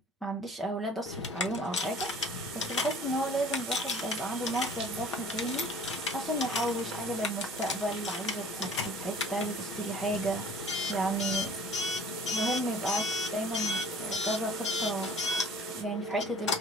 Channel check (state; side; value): normal; both; correlation 0.50